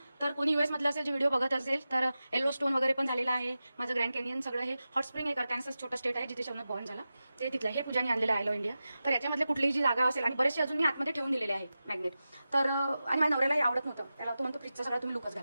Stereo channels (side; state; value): both; inverted; correlation -0.93